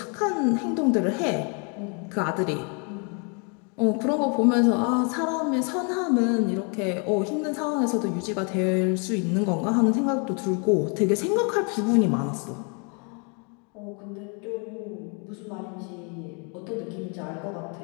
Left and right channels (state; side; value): quieter; right; 36.2 dB